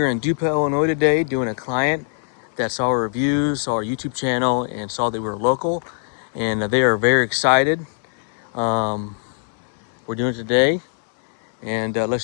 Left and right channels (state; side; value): silent; right; 65 dB below the other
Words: in DuPont, Illinois today doing a client that saw our reviews, saw our YouTube channel, and saw that we were local. And they are very excited. We're doing it today. And